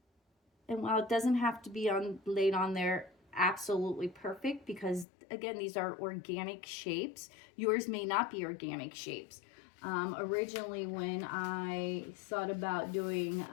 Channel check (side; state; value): right; drops out; at 5.1 s